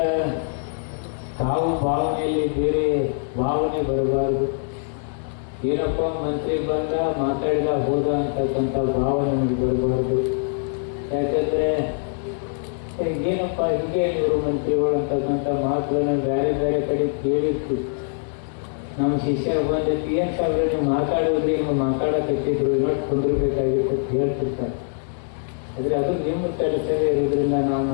ತಾವು ಭಾವನೆಯಲ್ಲಿ ಬೇರೆ ಭಾವನೆ ಬರಬಾರದು. ಏನಪ್ಪ ಮಂತ್ರಿ ಬಂದ ಮಾತಾಡಿದ ಹೋದ ಅಂತಕ್ಕಂಥ ಭಾವನೆ ನಮಗೆ ಬರಬಾರ್ದು. ಯಾಕಂದರೆ ಏನಪ್ಪ ಹಿಂಗೆ ಇವರು ಮಂತ್ರಿಗಳು ಅಂತಕ್ಕಂಥ ಮಾತುಗಳನ್ನ ಬೇರೆ ಬೇರೆ ಕಡೆ ಕೇಳಿತ್ತು. ನಮ್ಮ ಶಿಷ್ಯರ ಬಂದಿತ್ತು, ಏನು ಸಾಹೇಬ್ರೆ ನೀವು ಮಾತಾಡೋದ್ರಿ, ಹಿಂಗೆ ಮಾತಾಡಕತ್ತಿದ್ರು, ಇನ್ನೊಟ್ಟು ಕುಂದಿರ್ಬೇಕಾಗಿತ್ತು ಅಂತ ಹೇಳ್ತಿರ್ತಾರೆ. ಆದರೆ ಅದು ನಿಮ್ಮ ಕೆಲಸವೇ ಇರೋದ್ರಿಂದ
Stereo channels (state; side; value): silent; right; digital silence